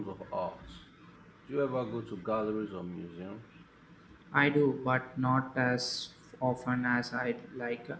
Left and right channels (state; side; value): identical; both; correlation 1.00